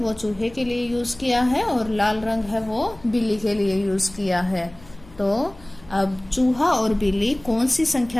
चूहे के लिए यूज किया है और लाल रंग है वो बिल्ली के लिए यूज किया है। तो अब चूहा और बिल्ली कौन सी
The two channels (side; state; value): left; noise; hum, 23 dB below the sound